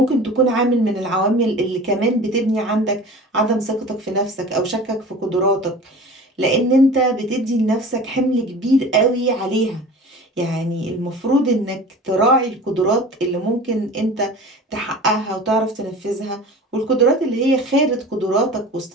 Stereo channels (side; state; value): both; normal; correlation 0.38